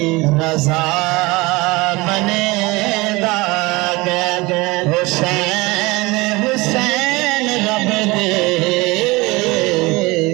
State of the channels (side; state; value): left; quieter; 23.1 dB